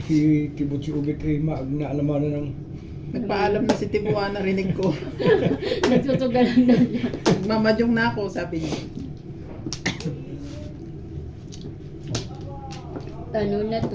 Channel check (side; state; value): both; identical; correlation 1.00